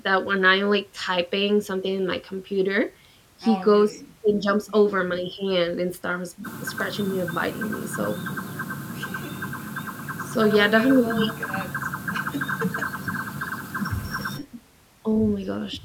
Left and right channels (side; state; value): both; identical; correlation 1.00